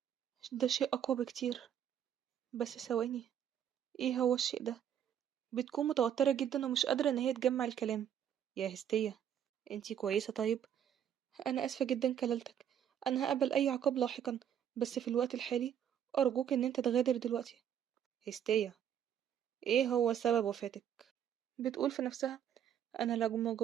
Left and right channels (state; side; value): quieter; left; 9.4 dB